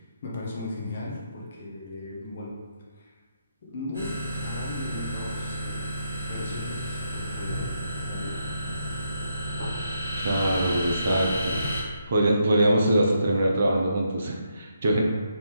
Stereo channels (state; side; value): inverted; both; correlation -0.78